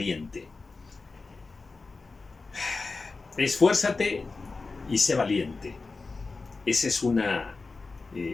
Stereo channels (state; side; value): quieter; right; 4.0 dB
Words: Esfuérzate y sé valiente. Esa es una...